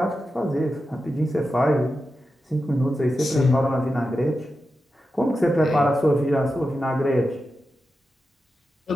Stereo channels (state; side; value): normal; both; correlation 0.90